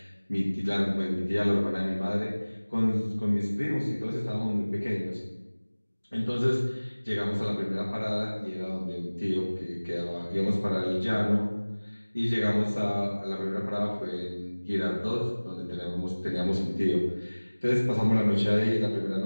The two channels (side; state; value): both; inverted; correlation -1.00